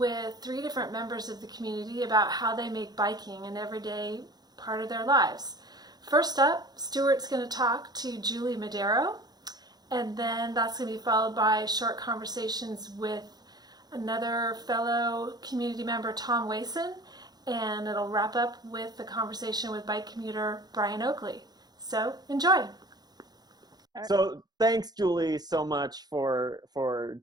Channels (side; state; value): left; late; 0.19 ms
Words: three different members of the community about how they make biking an everyday part of their lives. First up, Stuart's going to talk to Julie Madero, and then that's going to be followed by short conversations with another fellow community member, Tom Wason, and it'll wrap up with the conversation with bike commuter Brian Oakley. So enjoy. So thanks, Julie, so much for